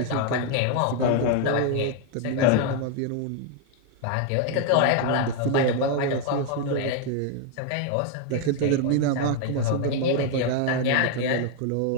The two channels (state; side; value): different; both; correlation 0.00